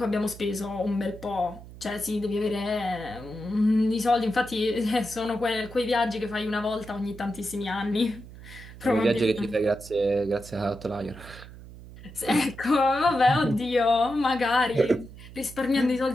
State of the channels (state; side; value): noise; right; hum, 16 dB below the sound